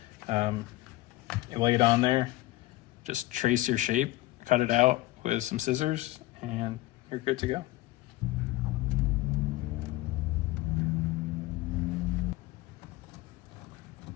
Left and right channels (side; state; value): right; quieter; 18.0 dB